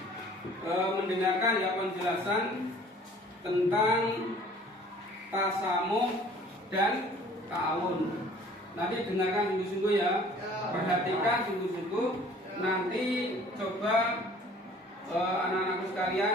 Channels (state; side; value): normal; both; correlation 0.52